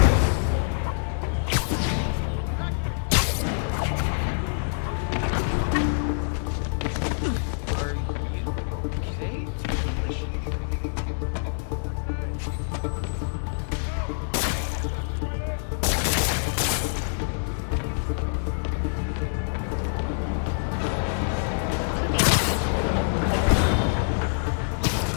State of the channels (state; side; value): silent; right; digital silence